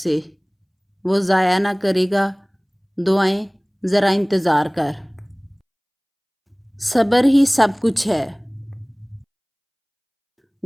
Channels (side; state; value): both; identical; correlation 1.00